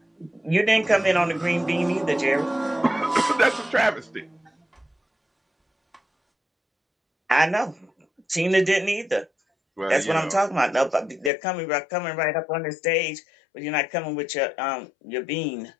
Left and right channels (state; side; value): drops out; right; at 11.3 s